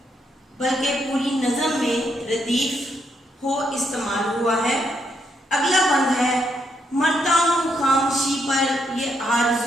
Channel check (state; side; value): normal; both; correlation 0.78